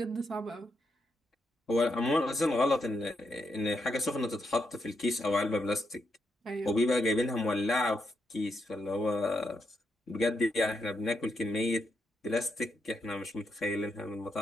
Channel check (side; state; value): both; normal; correlation 0.81